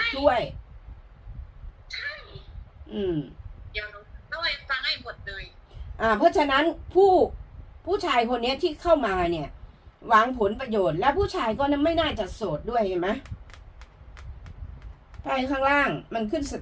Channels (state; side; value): identical; both; correlation 1.00